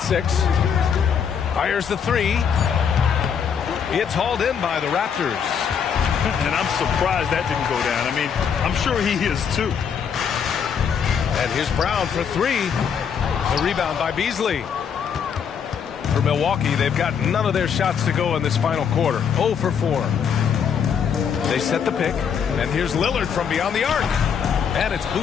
6. Fires the 3. It's hauled in by the Raptors. And I'm surprised that didn't go down. I mean, I'm sure he is too. And here's Brown for 3. The rebound by Beasley. For Milwaukee, they've got none of their shots to go in this final quarter. 0 for 4. They set the pick. And here's Lillard from beyond the arc. And it's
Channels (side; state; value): right; quieter; 7.3 dB